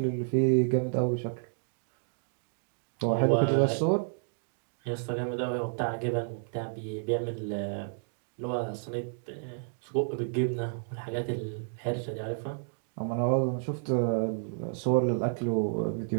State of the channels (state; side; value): silent; left; digital silence